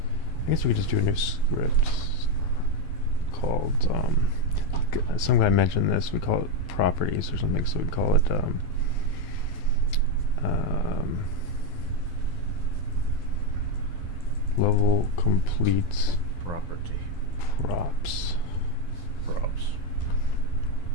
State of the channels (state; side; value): late; right; 12 ms